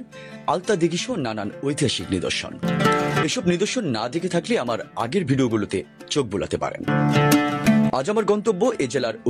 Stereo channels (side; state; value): both; identical; correlation 1.00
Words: আলতা দিঘি সহ নানান ঐতিহাসিক নিদর্শন। এসব নিদর্শন না দেখে থাকলে আমার আগের ভিডিওগুলোতে চোখ বোলাতে পারেন। আজ আমার গন্তব্য এ জেলার